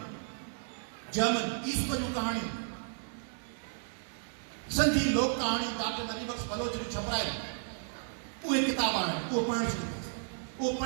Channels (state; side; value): silent; left; digital silence